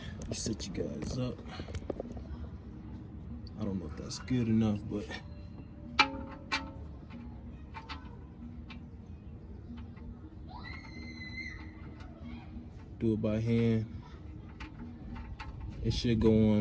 Let me set you guys up. I don't know if that's good enough, but do it by hand. It should go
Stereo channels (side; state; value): both; identical; correlation 1.00